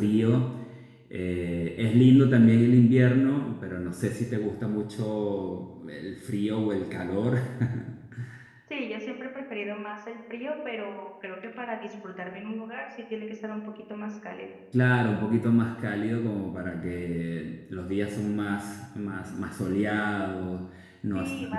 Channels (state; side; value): identical; both; correlation 1.00